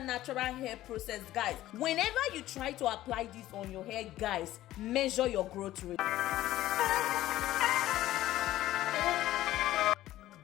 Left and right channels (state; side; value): quieter; right; 14.7 dB